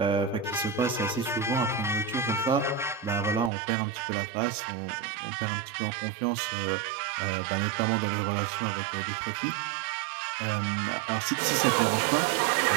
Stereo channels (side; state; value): left; drops out; at 3.5 s